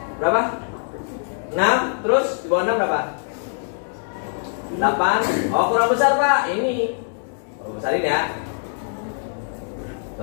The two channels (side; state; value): right; silent; digital silence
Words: Berapa? 6, terus di bawah 6 berapa? 8. Oh, kurang besar Pak. Ini besarin ya.